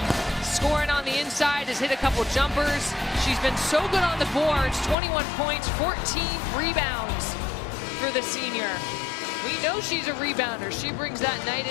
Scoring on the inside, has hit a couple jumpers. She's been so good on the boards, 21 points, 14 rebounds for the senior. We know she's a rebounder. She brings that night in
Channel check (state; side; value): drops out; right; at 5.0 s